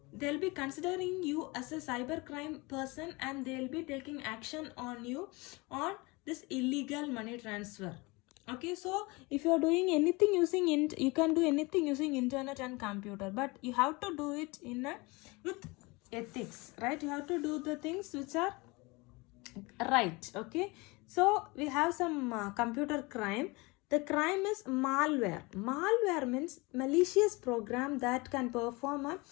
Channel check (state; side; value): quieter; right; 25.2 dB